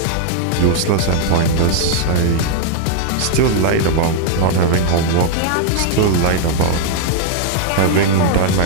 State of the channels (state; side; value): different; both; correlation 0.00